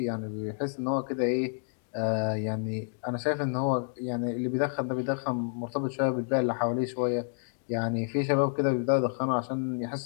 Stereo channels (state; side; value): silent; right; digital silence